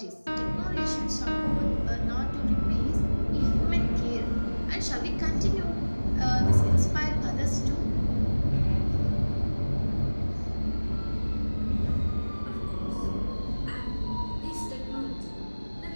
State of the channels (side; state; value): both; inverted; correlation -1.00